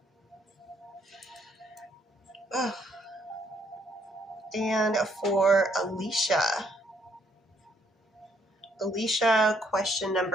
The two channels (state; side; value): normal; both; correlation 0.70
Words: Ugh. And for Alicia. Alicia, question